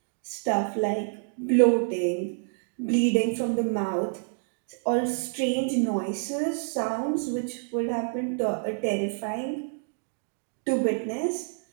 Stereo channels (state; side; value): silent; left; 59 dB below the other